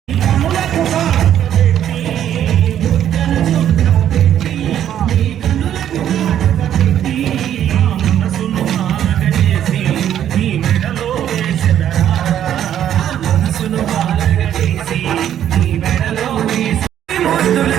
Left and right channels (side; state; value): left; quieter; 10.5 dB